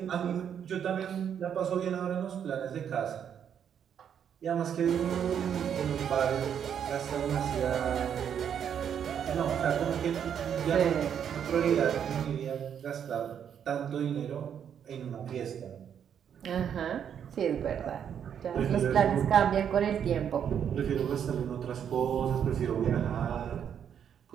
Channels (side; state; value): left; quieter; 8.5 dB